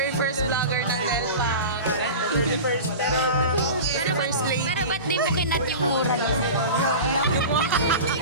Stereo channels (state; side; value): inverted; both; correlation -0.32